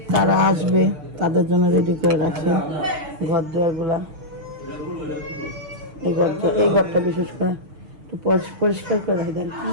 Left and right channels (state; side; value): late; left; 6.6 ms